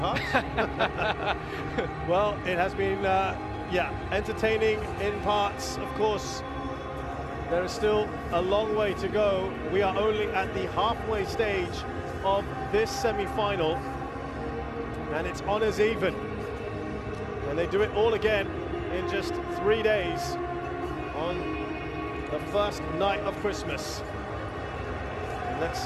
Well, it has been, entertaining in parts. Of course, there is still a long way to go. We are only at the halfway stage of this semi-final, and it's honours even. And they do it all again in just 3 days on the first night of Christmas. And let's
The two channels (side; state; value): both; identical; correlation 1.00